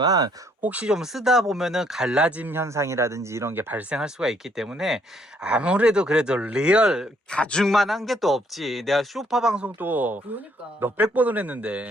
혹시 좀 쓰다 보면은 갈라짐 현상이라든지 이런 게 발생할 수가 있기 때문에 아무래도 그래도 리얼 가죽만 한 게 또 없지. 내가 쇼파 방송도 그러니까 몇백 번을 했는데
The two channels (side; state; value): both; normal; correlation 0.67